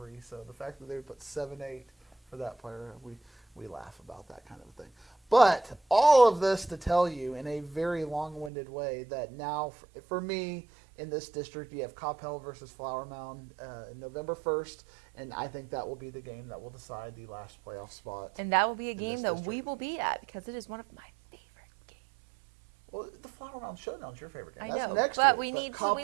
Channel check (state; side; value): drops out; left; at 8.5 s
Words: So the fact that they would put 7.8 for that player, we laugh about that kind of thing. But all of this to tell you in a very long-winded way that now, for me, in this district, you have Coppell versus Flower Mound November 1st, and I think that will be the game that will decide the last playoff spot. And that will be a game that we will be at because it is one of my favorite games. Well, the Flower Mound Showdown is your favorite game. I know, next but week. we need